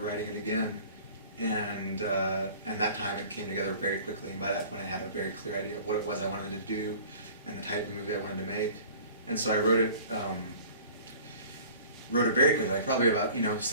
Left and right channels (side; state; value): both; inverted; correlation -0.45